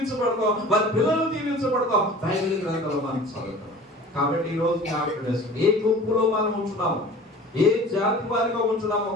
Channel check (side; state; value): both; normal; correlation 0.42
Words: వారి పిల్లలు దీవించబడతాం. బైబిల్ గ్రంథంలో మనం చదువుతాం. కాబట్టి ఈ రోజు ఏ గుంపులో మనం ఉంటున్నాము, ఏ జాతి వారిగా ఉంటున్నామో